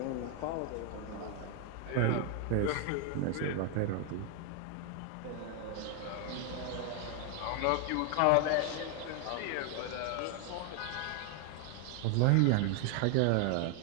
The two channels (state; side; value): different; both; correlation 0.00